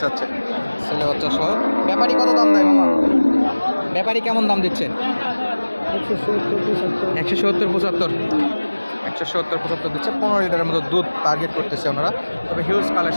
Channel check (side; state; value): both; inverted; correlation -1.00